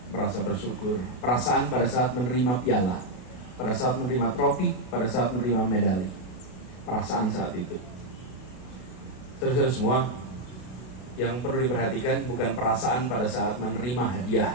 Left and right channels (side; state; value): right; late; 32 ms